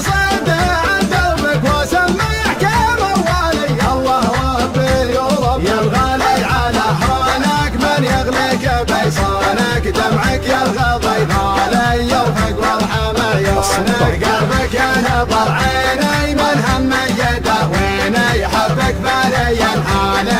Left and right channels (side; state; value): both; identical; correlation 1.00